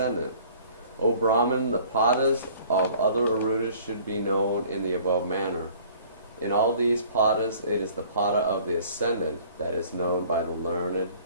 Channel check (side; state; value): both; inverted; correlation -0.53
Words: O Brahman, the padas of other Ārūḍhas should be known in the above manner. In all these padas, it is the pada of the ascendant that is known by the learned